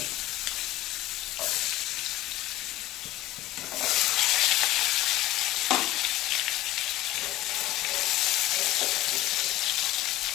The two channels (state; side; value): quieter; right; 16.5 dB